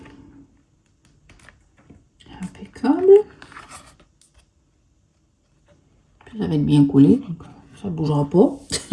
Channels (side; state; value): both; identical; correlation 1.00